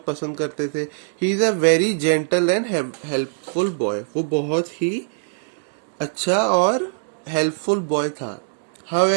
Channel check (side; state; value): left; silent; digital silence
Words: पसंद करते थे. He is a very gentle and helpful boy. वो बहुत ही अच्छा और हेल्पफुल बॉय था.